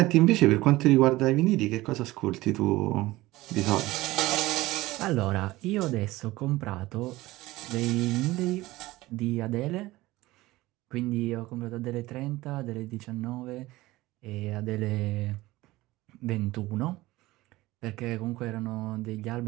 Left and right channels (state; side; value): quieter; left; 18.6 dB